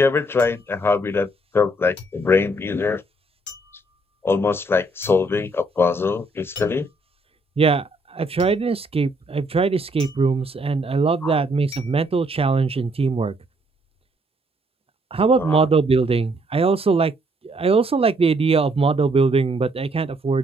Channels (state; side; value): normal; both; correlation 0.69